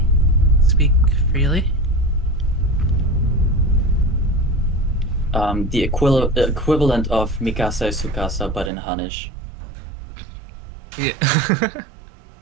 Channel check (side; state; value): left; drops out; at 8.7 s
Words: speak freely. The equivalent of Mikasa Sukasa, but in Hanish. Yeah.